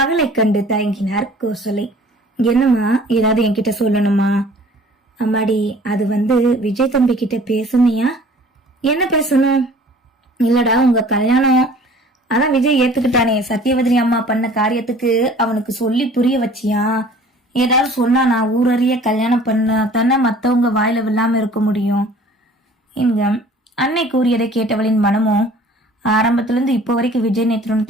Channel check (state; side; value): normal; both; correlation 0.50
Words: கண்டு தயங்கினார் கோசலை. என்னம்மா, ஏதாவது என்கிட்ட சொல்லணுமா? அம்மாடி, அது வந்து விஜய் தம்பி கிட்ட பேசுனியா? என்ன பேசணும்? இல்லடா, உங்க கல்யாணம் அதான் விஜய் ஏத்துக்கிட்டானே. சத்தியவதனி அம்மா பண்ண காரியத்துக்கு அவனுக்கு சொல்லி புரிய வச்சியா? ஏதாவது சொன்னா நான் ஊரறிய கல்யாணம் பண்ண தானே மத்தவங்க வாயில விழாம இருக்க முடியும். இங்க அன்னை கூறியதை கேட்டவளின் மனமும் ஆரம்பத்திலிருந்து இப்போ வரைக்கும் விஜய் நேத்திரன்